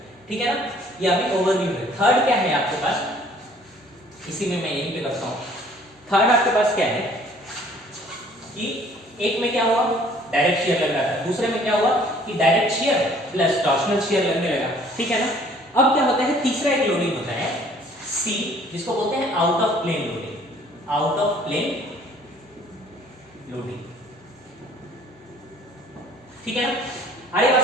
ठीक है ना। ये अभी ओवरव्यू है। थर्ड क्या है आपके पास, इसी में मैं यहीं पे करता हूँ। थर्ड आपके पास क्या है कि एक में क्या हुआ, डायरेक्ट शियर लग रहा था, दूसरे में क्या हुआ कि direct shear plus torsional shear लगने लगा, ठीक है ना। अब क्या होता है, तीसरा एक लोडिंग होता है C, जिसको बोलते हैं out of plane loading. Out of plane loading, ठीक है ना। अरे बात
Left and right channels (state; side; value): normal; both; correlation 0.56